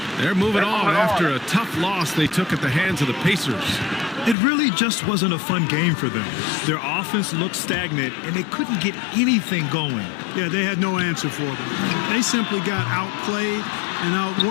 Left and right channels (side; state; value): right; drops out; at 4.4 s